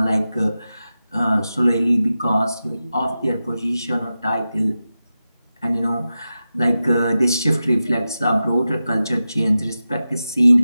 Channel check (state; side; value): inverted; both; correlation -0.92